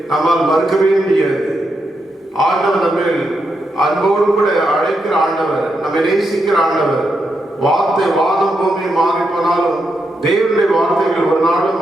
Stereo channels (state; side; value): normal; both; correlation 0.83